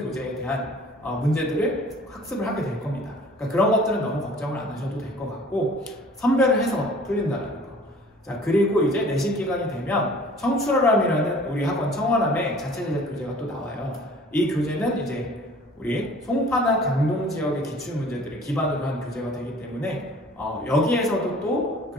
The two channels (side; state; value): both; normal; correlation 0.50